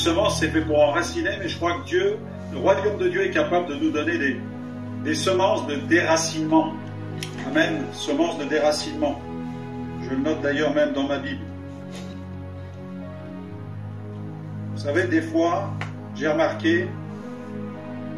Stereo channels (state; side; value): identical; both; correlation 1.00